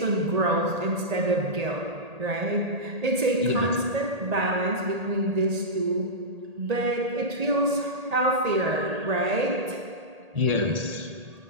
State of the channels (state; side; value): late; left; 1.8 ms